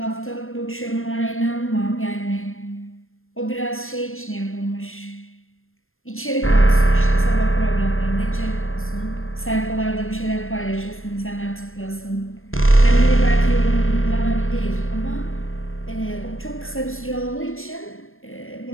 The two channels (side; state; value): right; late; 0.60 ms